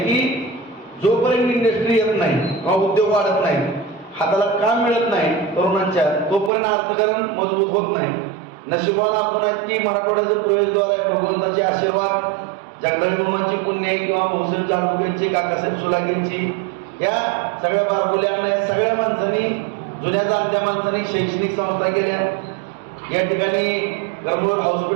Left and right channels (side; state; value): left; drops out; at 6.5 s